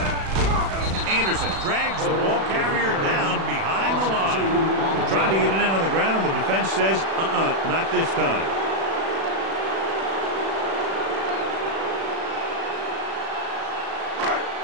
Anderson drags the ball carrier down behind the line. They're trying to get it in on the ground, and the defense says, not this time.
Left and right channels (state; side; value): late; left; 36 ms